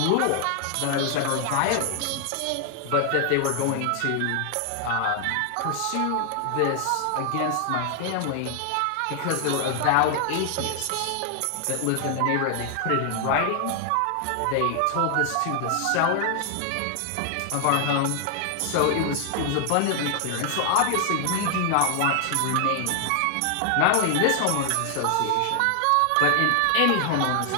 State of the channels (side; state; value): both; different; correlation 0.00